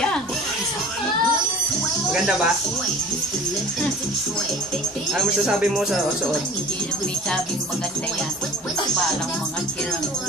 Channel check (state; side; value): normal; both; correlation 0.45